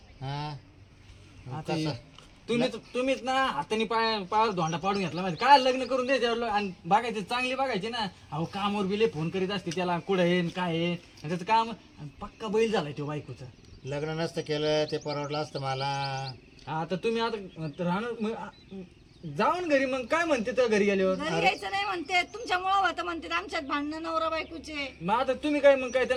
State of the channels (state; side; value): identical; both; correlation 1.00